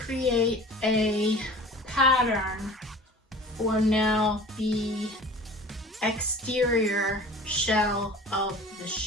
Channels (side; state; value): both; normal; correlation 0.42